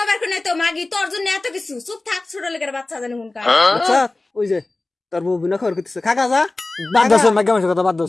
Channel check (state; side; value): quieter; right; 3.0 dB